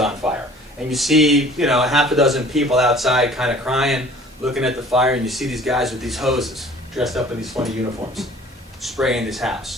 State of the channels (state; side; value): normal; both; correlation 0.50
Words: fire. And you see, you know, a half a dozen people outside kind of crying, looking at the fire, and you see these guys with these hoses, dressed up in these funny uniforms, spraying this